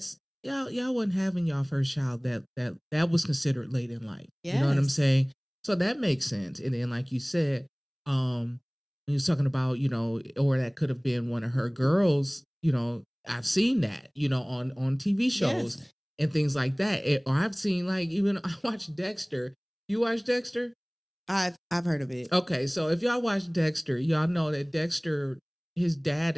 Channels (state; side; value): identical; both; correlation 1.00